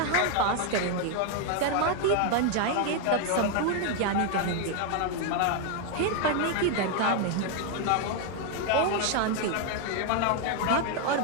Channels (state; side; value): different; both; correlation 0.01